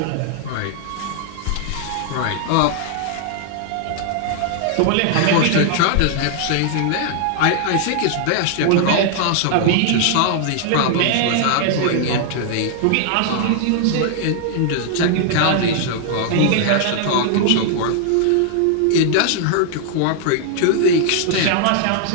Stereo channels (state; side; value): different; both; correlation 0.00